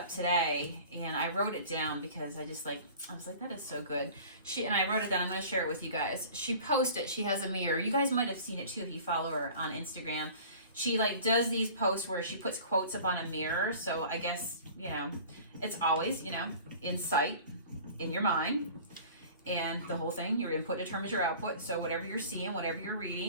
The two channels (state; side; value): inverted; both; correlation -0.44